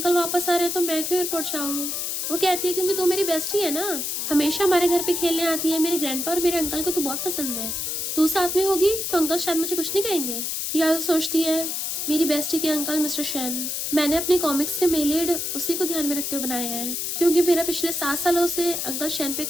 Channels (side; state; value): left; noise; hiss, 2 dB below the sound